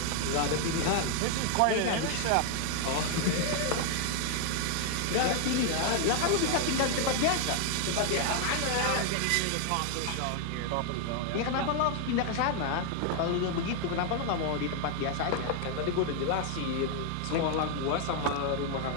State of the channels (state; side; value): different; both; correlation 0.00